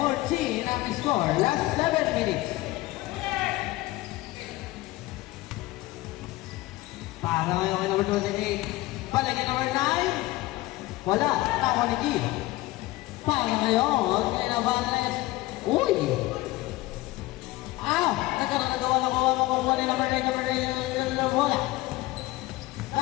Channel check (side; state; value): right; quieter; 18.7 dB